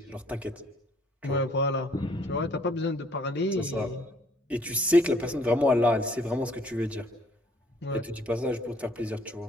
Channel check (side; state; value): both; normal; correlation 0.62